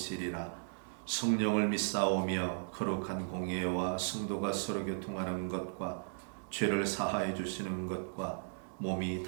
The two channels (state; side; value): silent; left; 54 dB below the other